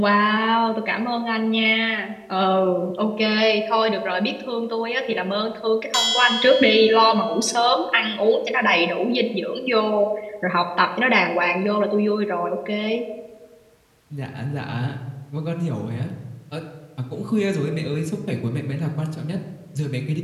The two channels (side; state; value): both; identical; correlation 1.00